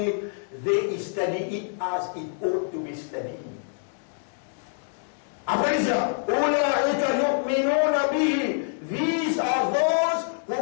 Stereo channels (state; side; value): silent; right; digital silence